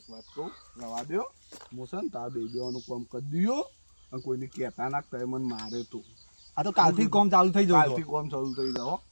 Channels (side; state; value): both; inverted; correlation -1.00